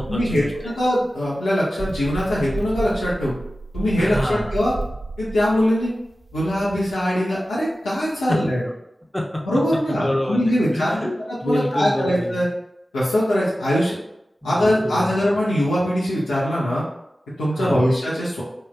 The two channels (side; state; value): both; normal; correlation 0.94